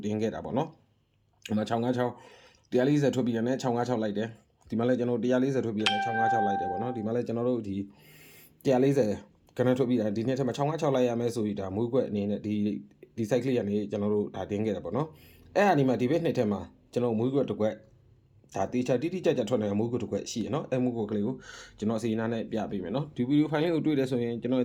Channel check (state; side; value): identical; both; correlation 1.00